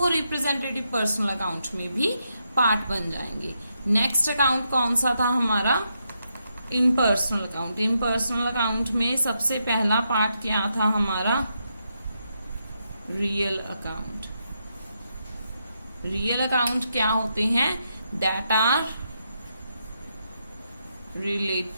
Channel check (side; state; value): both; inverted; correlation -0.82